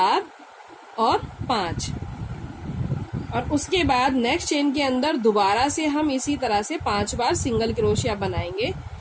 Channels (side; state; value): both; identical; correlation 1.00